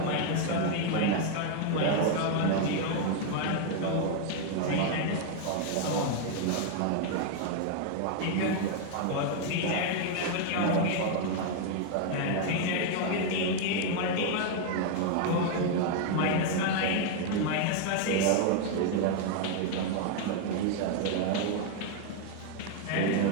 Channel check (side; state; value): both; different; correlation 0.00